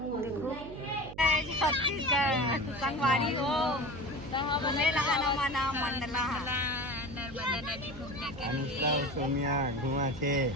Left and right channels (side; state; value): right; noise; hum, 13 dB below the sound